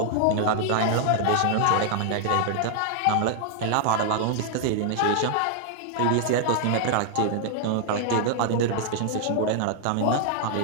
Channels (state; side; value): different; both; correlation 0.00